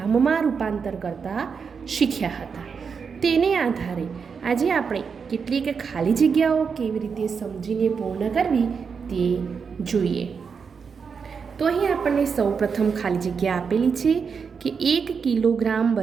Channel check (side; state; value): left; quieter; 5.9 dB